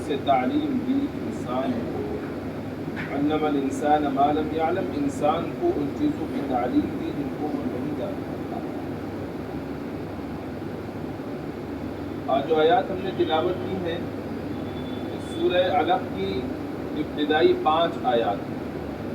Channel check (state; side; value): identical; both; correlation 1.00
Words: سے تعلیم دی انسان کو. علم الانسان ما لم يعلم، انسان کو ان چیزوں کی تعلیم دی جن کو وہ نہیں جانتا. آج جو آیات ہم نے تلاوت کی ہیں سورہ علق کی ابتدائی 5 آیات ہیں.